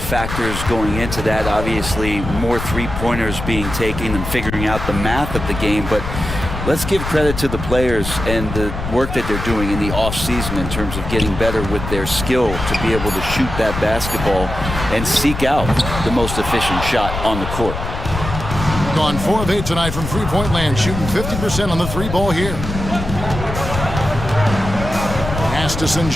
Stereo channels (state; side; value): noise; left; rumble, 6 dB below the sound